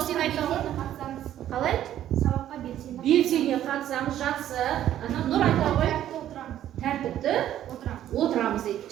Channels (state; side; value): quieter; left; 11.8 dB